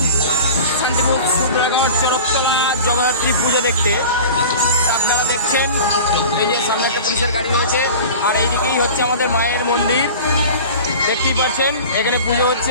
শান্তিপুর সুব্রাগড় চরকতলা জগদ্ধাত্রী পুজো দেখতে। আপনারা দেখছেন এই যে সামনে একটা পুলিশের গাড়ি রয়েছে, আর এইদিকেই হচ্ছে আমাদের মায়ের মন্দির। দেখতেই পাচ্ছেন এখানে পুজো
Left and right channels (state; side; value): inverted; both; correlation -0.36